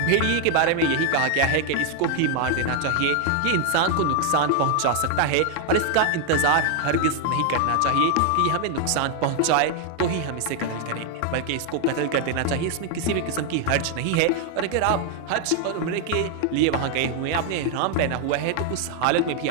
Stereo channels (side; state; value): both; different; correlation 0.00